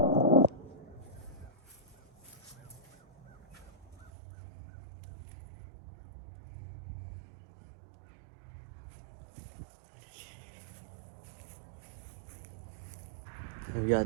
Here we got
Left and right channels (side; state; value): left; drops out; at 4.1 s